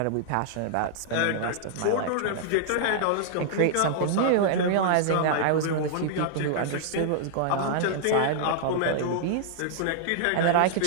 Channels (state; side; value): different; both; correlation -0.01